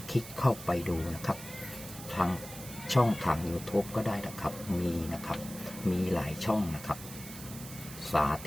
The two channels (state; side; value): noise; right; hiss, 13 dB below the sound